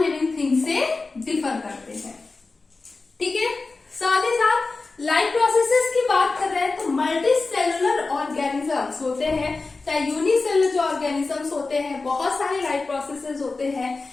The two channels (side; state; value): right; quieter; 3.8 dB